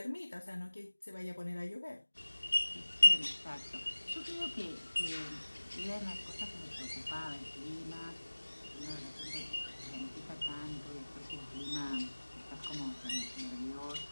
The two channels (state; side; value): inverted; both; correlation -1.00